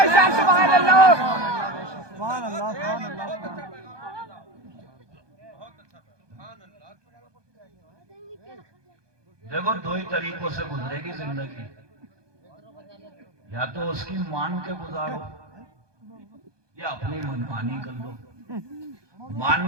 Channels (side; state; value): left; late; 1.2 ms